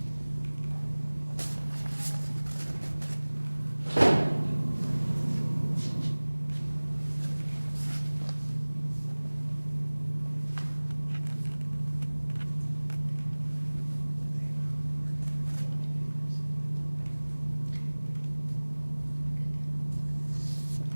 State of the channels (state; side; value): inverted; both; correlation -1.00